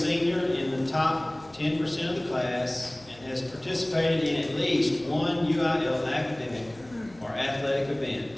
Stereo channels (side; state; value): left; noise; hum, 26 dB below the sound